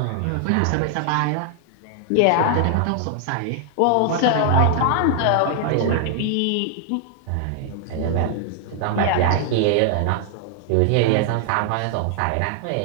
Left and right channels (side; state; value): both; different; correlation 0.00